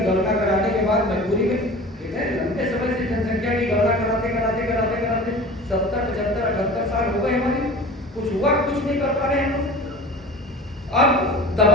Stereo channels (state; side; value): normal; both; correlation 0.38